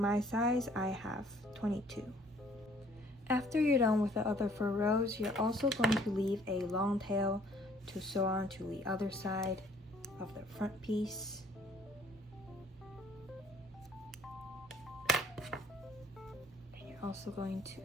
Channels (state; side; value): normal; both; correlation 0.59